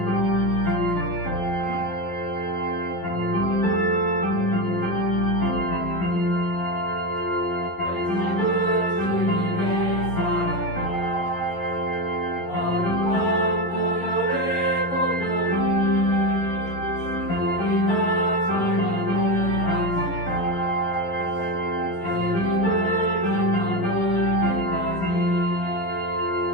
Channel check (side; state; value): right; late; 11 ms